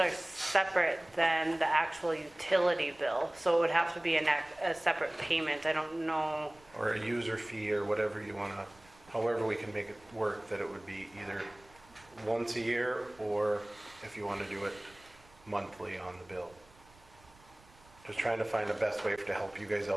separate than the actual utility bill, so it would have to be a separate payment. I don't know. Or a user fee or whatever you want to, however we can make it work, that it would be either once a year or if you want to do it monthly on the bill. Just trying to find the best way to help you guys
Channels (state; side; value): noise; right; rumble, 27 dB below the sound